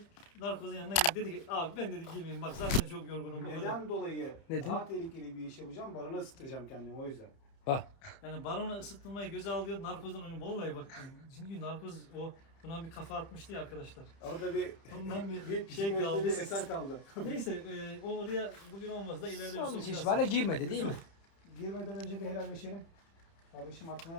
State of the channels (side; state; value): right; late; 30 ms